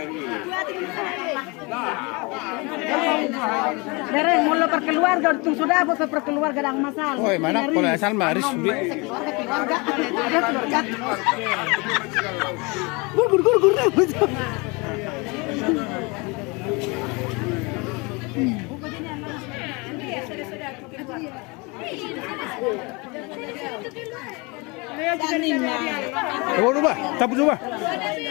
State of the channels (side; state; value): right; quieter; 27.7 dB